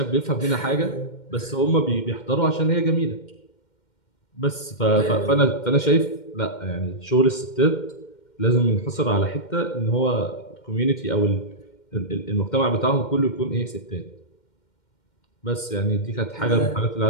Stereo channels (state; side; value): late; right; 2.1 ms